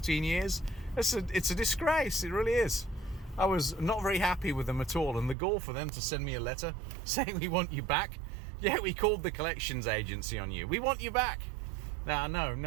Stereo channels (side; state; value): left; drops out; at 5.4 s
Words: years, it's a disgrace. It really is. I was not very happy with them at all, and the gall for them to send me a letter saying, we want you back. Yeah, we called the collections agency on you. We want you back. No,